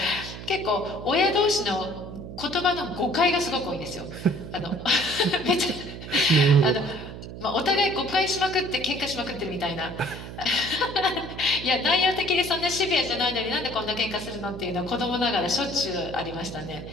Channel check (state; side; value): noise; right; hum, 11 dB below the sound